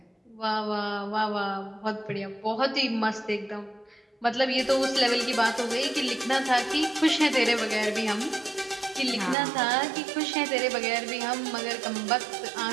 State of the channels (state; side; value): drops out; left; at 9.3 s